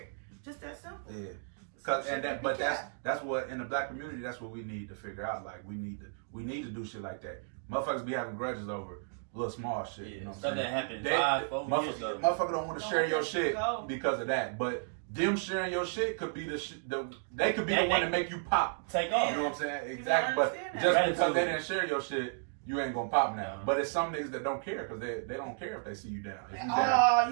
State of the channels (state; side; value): silent; left; digital silence